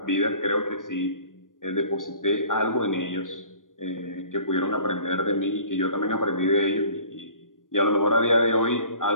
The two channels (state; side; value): late; right; 0.89 ms